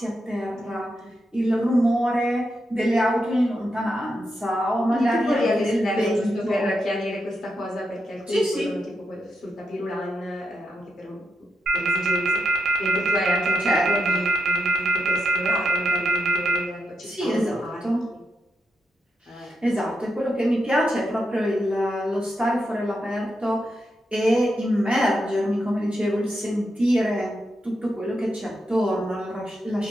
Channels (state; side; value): normal; both; correlation 0.84